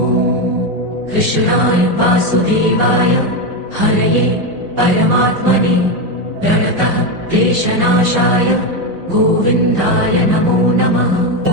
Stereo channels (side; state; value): left; late; 5.4 ms